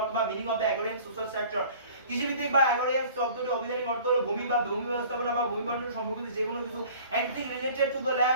meaning of the agrarian social sector. কৃষিভিত্তিক বা অ্যাগ্রারিয়ান শব্দটির অভিধানিক অর্থ হলো ভূমি বা ভূমি ব্যবস্থাপনা বা ভূমি বন্টন সম্পর্কিত যে কোনো কিছু, anything related to the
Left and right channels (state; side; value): inverted; both; correlation -0.48